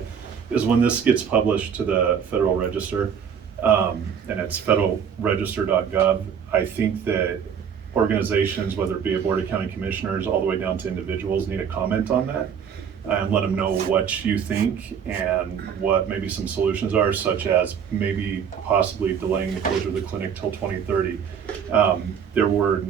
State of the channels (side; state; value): left; quieter; 7.6 dB